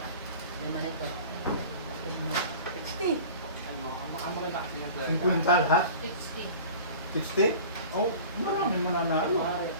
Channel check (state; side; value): inverted; both; correlation -0.40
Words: Lima nito. 60! Ang maganda kasi yung 50 lahat? 60. 60? Oh, marami mananalo.